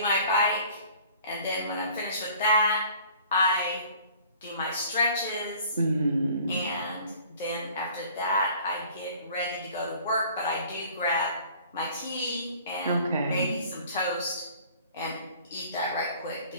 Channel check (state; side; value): inverted; both; correlation -0.51